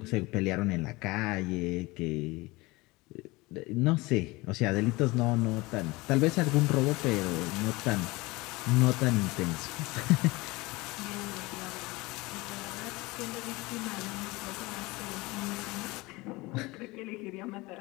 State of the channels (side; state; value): right; quieter; 22.5 dB